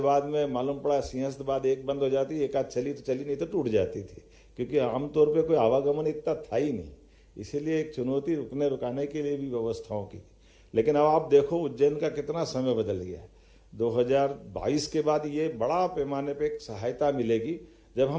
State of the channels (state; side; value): identical; both; correlation 1.00